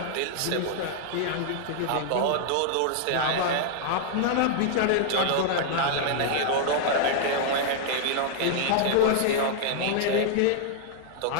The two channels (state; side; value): different; both; correlation -0.01